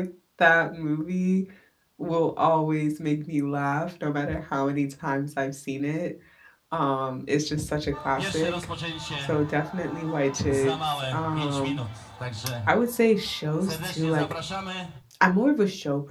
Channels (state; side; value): identical; both; correlation 1.00